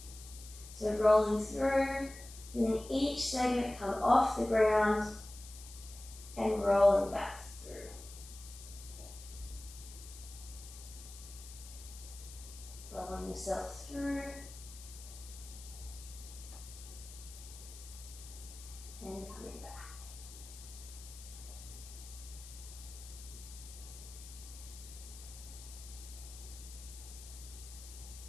So rolling through, feeling each segment come off the ground and rolling back through. Rolling yourself through and coming back.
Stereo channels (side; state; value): left; noise; hiss, 15 dB below the sound